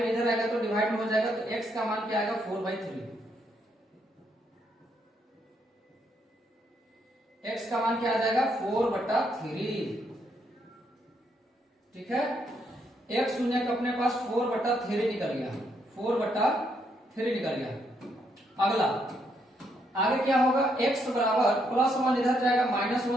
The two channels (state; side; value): normal; both; correlation 0.75